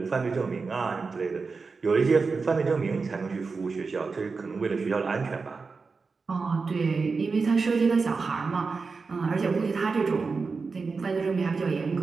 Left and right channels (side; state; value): left; quieter; 4.5 dB